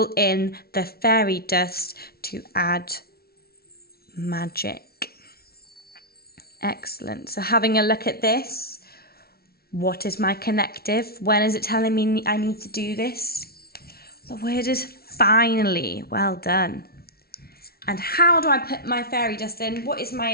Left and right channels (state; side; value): late; right; 0.44 ms